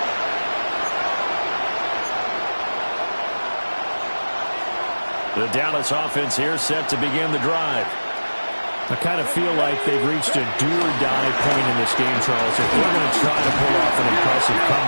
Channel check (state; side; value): inverted; both; correlation -1.00